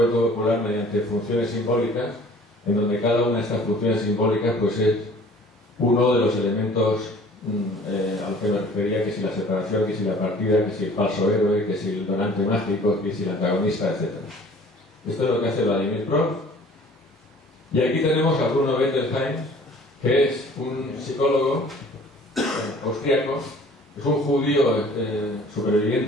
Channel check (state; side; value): normal; both; correlation 0.50